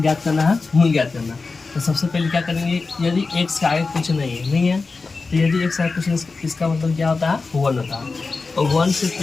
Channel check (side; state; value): right; quieter; 4.1 dB